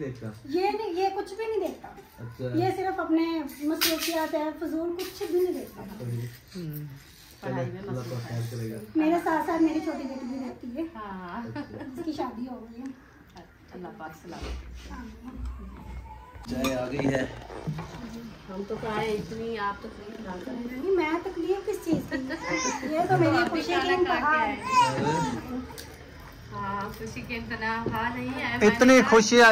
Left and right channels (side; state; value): both; identical; correlation 1.00